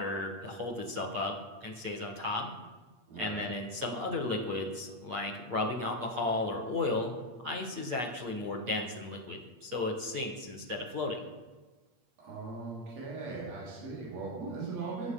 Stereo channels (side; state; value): left; late; 8.4 ms